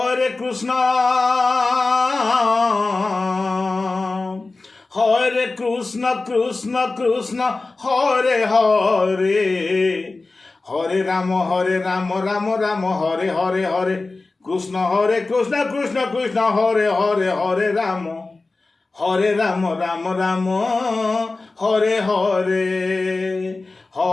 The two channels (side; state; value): right; quieter; 3.5 dB